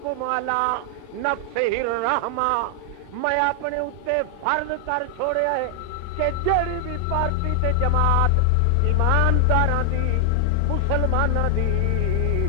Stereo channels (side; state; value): both; different; correlation 0.00